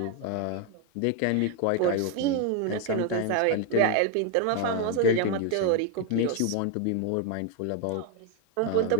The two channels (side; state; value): both; different; correlation 0.01